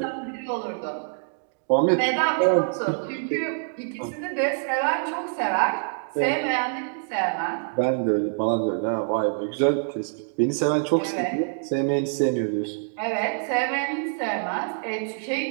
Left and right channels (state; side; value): silent; left; digital silence